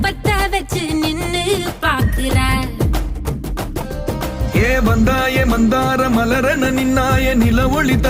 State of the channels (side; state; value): both; identical; correlation 1.00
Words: பத்த வச்சு நின்னு பாக்குற. ஏ வந்தாய மந்தார மலரன நின்னாய நில ஒளி